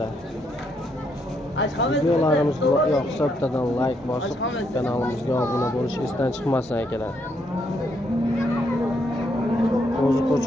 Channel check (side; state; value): both; normal; correlation 0.75